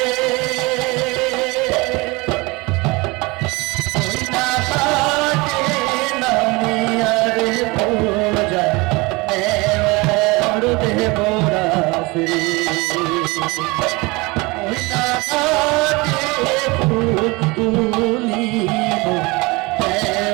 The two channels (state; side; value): quieter; left; 24.7 dB